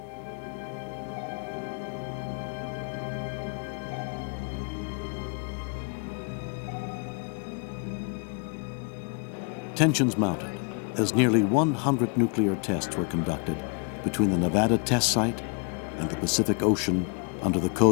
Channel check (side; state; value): right; quieter; 38.4 dB